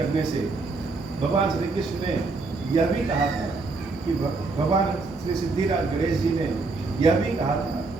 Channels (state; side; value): quieter; left; 3.8 dB